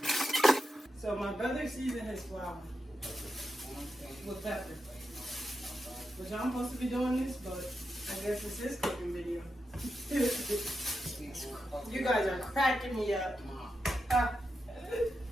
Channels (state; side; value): normal; both; correlation 0.88